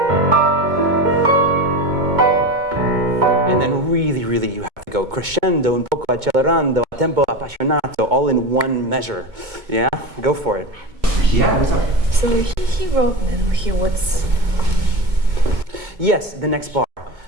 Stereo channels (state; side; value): late; left; 2.2 ms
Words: then really you have to go crescendo, un poco accelerando, a tempo appassionato, all in one measure. Yeah? Go for it. Yeah, what's up? So he wrote, what's... Yes, the next bar.